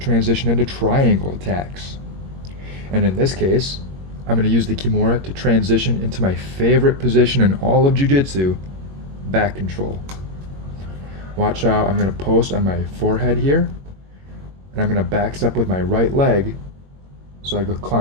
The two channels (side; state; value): left; late; 21 ms